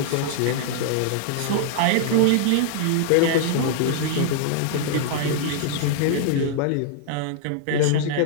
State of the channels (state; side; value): different; both; correlation -0.01